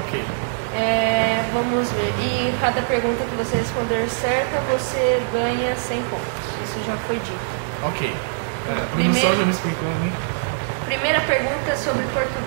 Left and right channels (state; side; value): silent; left; digital silence